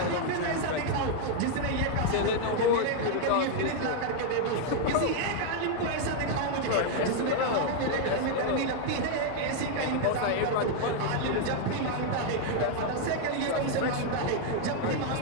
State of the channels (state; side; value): different; both; correlation 0.00